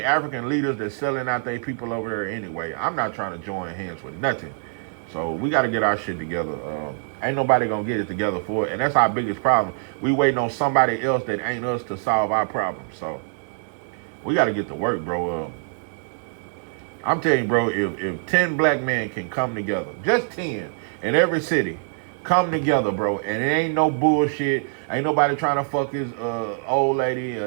African leaders that's selling out their people over there anyway. I'm not trying to join hands with nothing. So we got to get our shit together. Ain't nobody going to get it together for it. And that's our biggest problem. We waiting on somebody else that ain't us to solve our problems. So we got to get to work, bro. I'm telling you, bro, if 10 black men can come together, just 10 in every city, Come together, bro. And it ain't no bullshit. Ain't nobody trying to fuck his old lady,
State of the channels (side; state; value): left; silent; digital silence